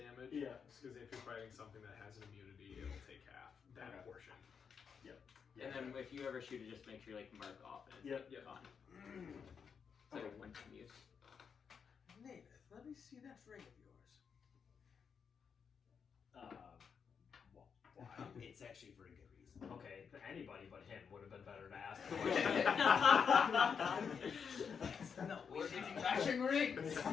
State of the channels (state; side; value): quieter; right; 6.5 dB